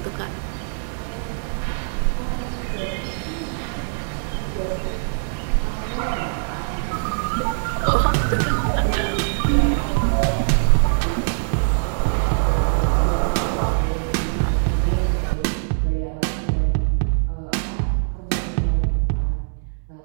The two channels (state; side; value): silent; left; digital silence